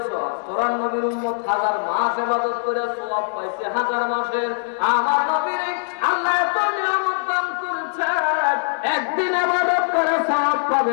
সওয়াব। তোরা নবীর উম্মত 1000 মাস ইবাদত করে সওয়াব পাইছে 1000 মাসের। আমার নবীর আল্লাহ এত নিয়ামত দান করেছেন, একদিন ইবাদত করে সওয়াব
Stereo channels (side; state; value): right; silent; digital silence